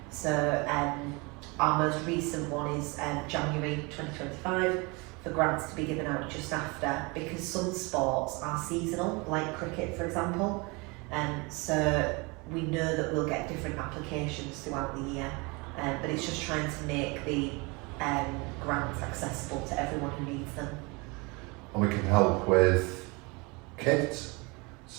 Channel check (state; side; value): quieter; left; 27.7 dB